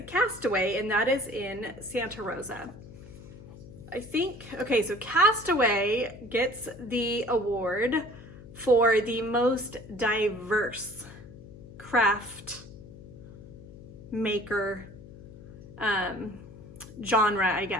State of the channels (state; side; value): noise; left; hum, 17 dB below the sound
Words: Castaway, and that is in Santa Rosa. I think, okay, so Castaway gets the award for the most diverse craft maker genre, I